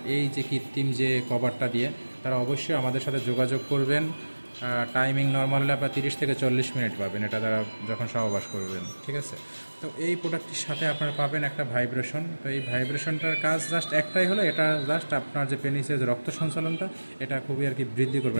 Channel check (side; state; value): both; inverted; correlation -1.00